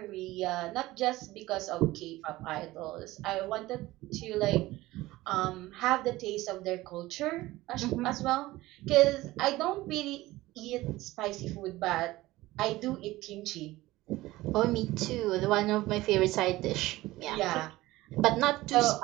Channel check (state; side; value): quieter; left; 18.1 dB